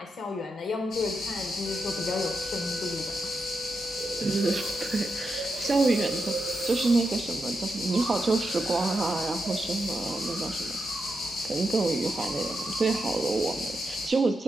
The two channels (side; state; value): both; normal; correlation 0.86